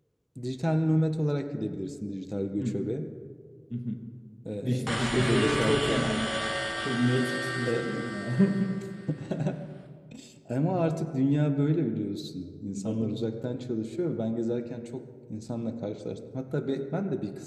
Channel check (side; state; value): both; identical; correlation 1.00